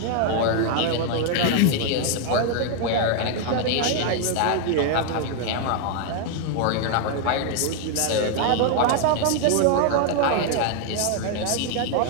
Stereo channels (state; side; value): different; both; correlation 0.00